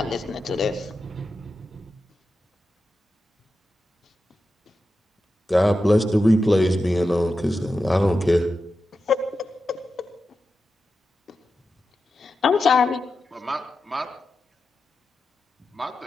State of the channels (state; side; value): normal; both; correlation 0.91